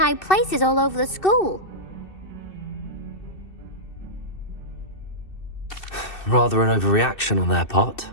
places all over the school. Rather an overreaction on their part.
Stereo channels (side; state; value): right; late; 2.6 ms